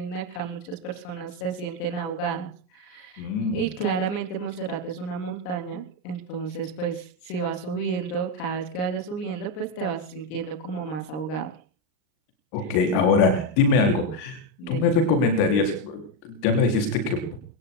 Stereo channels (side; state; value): right; late; 39 ms